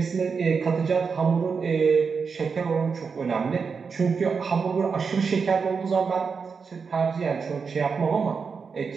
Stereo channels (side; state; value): left; quieter; 5.5 dB